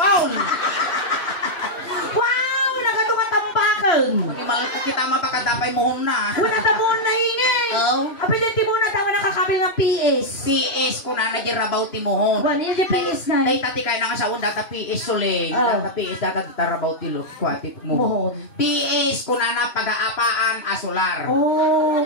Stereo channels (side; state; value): right; late; 3.0 ms